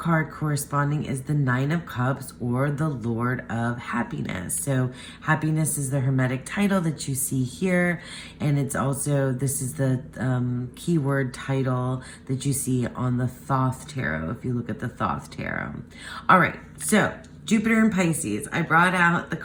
corresponding is the Nine of Cups, or the Lord of Happiness. So happiness is the Hermetic title that you see here, and it's also, this is the keyword title that you see on the Thoth tarot, if you look at the Thoth tarot. All right, so Jupiter in Pisces. I brought out the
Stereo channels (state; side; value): identical; both; correlation 1.00